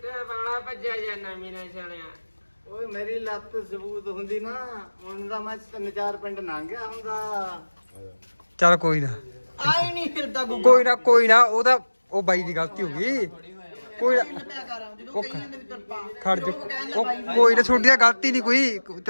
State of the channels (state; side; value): inverted; both; correlation -1.00